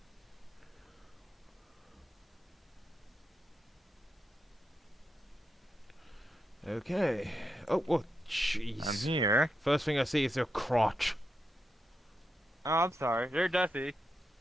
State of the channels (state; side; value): normal; both; correlation 0.85